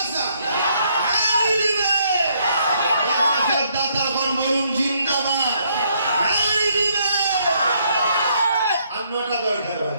নারে দিবে। মাদ্রাসার দাতাগণ বলুন জিন্দাবাদ, নারে দিবে। আন্নটা দরকার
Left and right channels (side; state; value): both; inverted; correlation -0.70